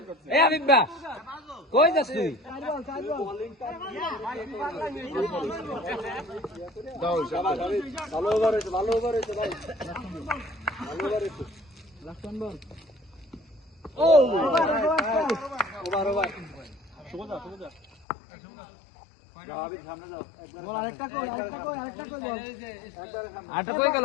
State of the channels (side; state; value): right; drops out; at 18.1 s